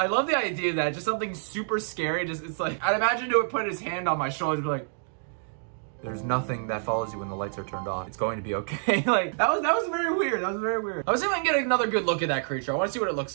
love the idea that just something super scary. Just, it's like, I'd imagine he would put his hand on my shoulder and be like, there's nothing that follows you when the lights are turned off. It's going to be okay. Like, that was very weird. That was very weird. I was even get another good look at that creature. I want to see what it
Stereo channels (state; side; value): silent; left; digital silence